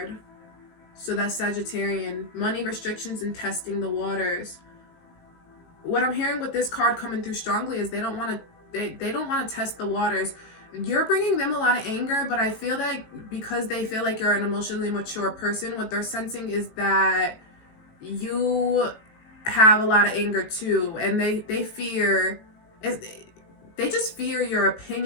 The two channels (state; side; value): late; right; 18 ms